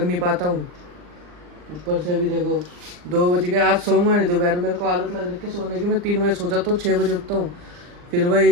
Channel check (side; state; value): left; late; 39 ms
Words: नहीं पाता हूँ। ऊपर से अभी देखो 2 बज गए, आज सोऊंगा नहीं दोपहर। मेरे को आदत लग रही है सोने की, मैं 3 बजे सो जाता हूँ, 6 बजे उठता हूँ। फिर